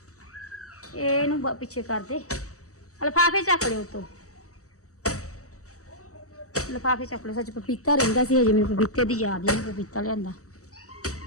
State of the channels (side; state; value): right; late; 0.66 ms